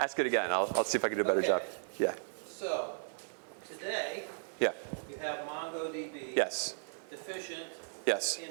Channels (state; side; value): silent; left; 54 dB below the other